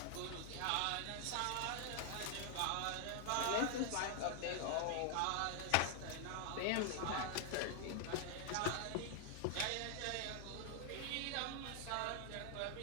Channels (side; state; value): both; different; correlation 0.00